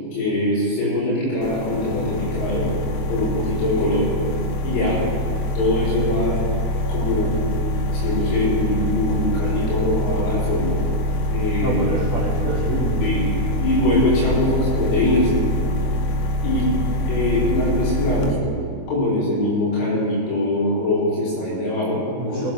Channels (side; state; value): right; late; 22 ms